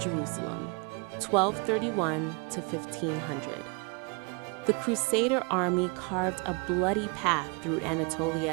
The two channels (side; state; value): left; quieter; 32.4 dB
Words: 1231 to 1500. The Crusader army carved a bloody path through